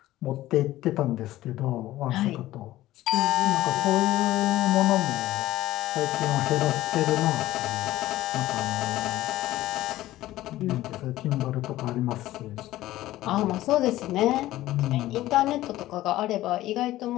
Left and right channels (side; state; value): right; quieter; 15.5 dB